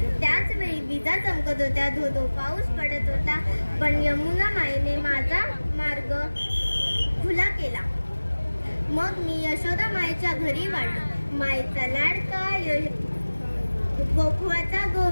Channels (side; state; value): both; inverted; correlation -1.00